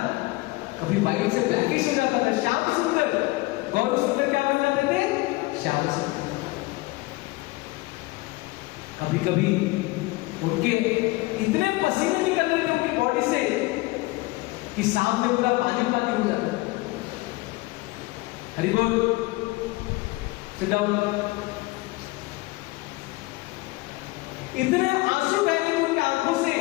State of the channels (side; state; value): right; quieter; 21.9 dB